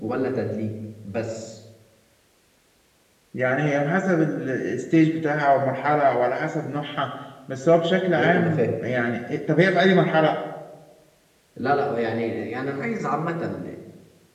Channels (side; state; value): both; identical; correlation 1.00